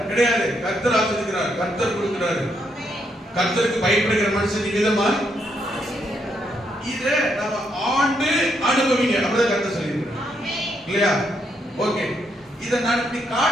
கிடையாது. கர்த்தர் ஆசீர்வதிக்கிறார், கர்த்தர் கொடுக்கிறாரு. கர்த்தருக்கு பயப்படுகிற மனுஷன் விதமா இதை நம்ம ஆண்டு அனுபவிங்க, அப்படிதான் கர்த்தர் சொல்லியிருக்கிறார் இல்லையா. ஓகே, இதை நான் இப்படி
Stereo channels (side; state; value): both; normal; correlation 0.77